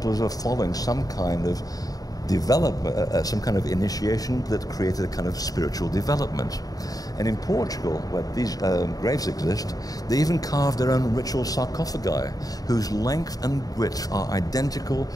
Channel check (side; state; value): right; late; 0.18 ms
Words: are following some kind of development, some kind of initiation that created a kind of spiritual development. And in Portugal, where these graves exist, they even carved their own ritual sarcophagi, whose length and width are identical